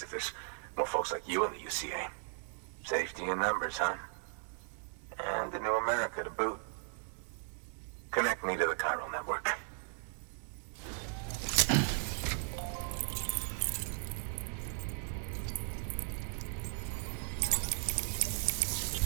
if there's more folks like you in the UCA. Safety in numbers, huh? And the new America to boot. Connect me to the chiral network.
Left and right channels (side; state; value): left; silent; 53 dB below the other